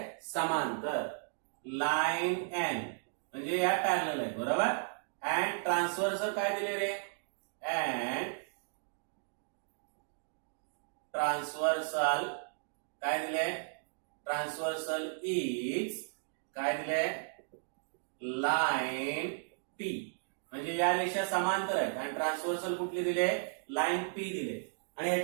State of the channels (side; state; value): left; silent; digital silence